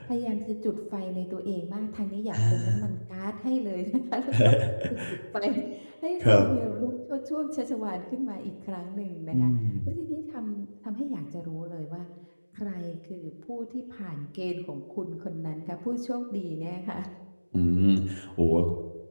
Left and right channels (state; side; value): inverted; both; correlation -1.00